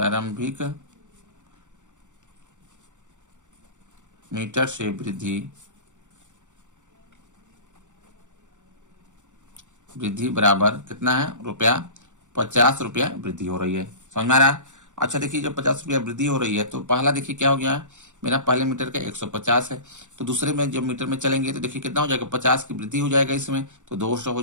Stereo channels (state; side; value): late; left; 0.85 ms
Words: मीटर से वृद्धि बराबर कितना है, रुपया 50 रुपया वृद्धि हो रही है। समझ में आ रहा है? अच्छा देखिए जब 50 रुपया वृद्धि हो रही है तो पहला देखिए क्या हो गया, मेरा पहले मीटर का 150 है, तो दूसरे में जब मीटर में चलेंगे तो देखिए कितना हो जाएगा, 50 की वृद्धि हो जाएगा, इसमें तो 200 हो